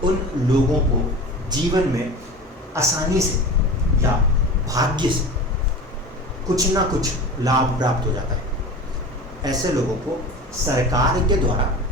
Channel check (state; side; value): normal; both; correlation 0.34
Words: उन लोगों को जीवन में आसानी से या भाग्य से कुछ ना कुछ लाभ प्राप्त हो जाता है। ऐसे लोगों को सरकार के द्वारा